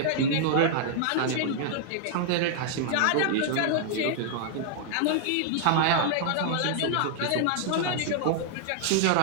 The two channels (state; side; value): different; both; correlation -0.01